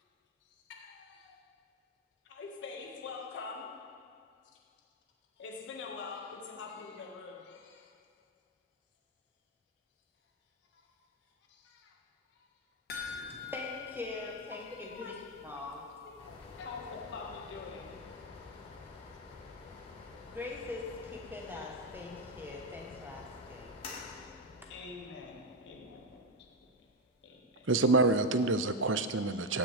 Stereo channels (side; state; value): both; normal; correlation 0.08